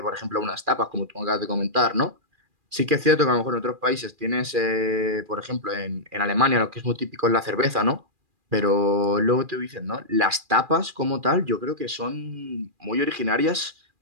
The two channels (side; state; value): left; late; 2.4 ms